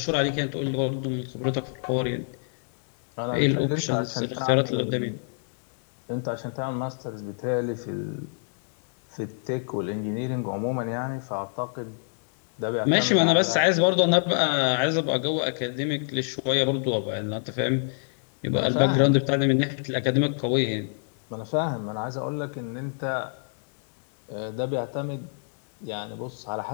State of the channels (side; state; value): right; silent; digital silence